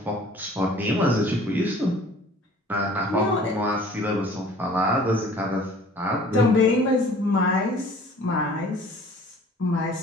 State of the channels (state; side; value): normal; both; correlation 0.50